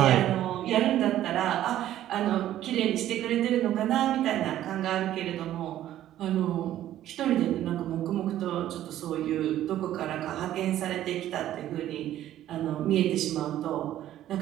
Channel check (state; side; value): quieter; left; 12.7 dB